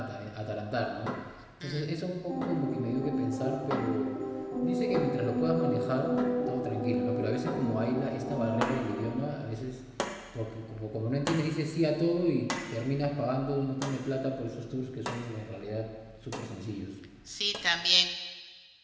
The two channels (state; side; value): identical; both; correlation 1.00